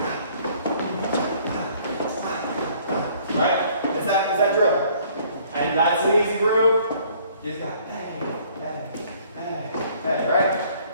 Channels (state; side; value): inverted; both; correlation -0.59